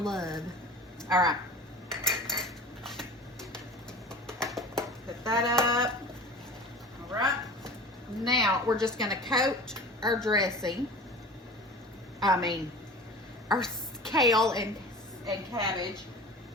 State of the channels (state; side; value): normal; both; correlation 0.38